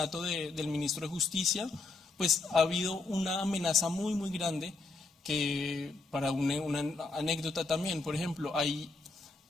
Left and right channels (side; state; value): right; quieter; 3.6 dB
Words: del ministro de Justicia, pues ha habido una amenaza muy, muy grande que, para una anécdota también, por ejemplo, hay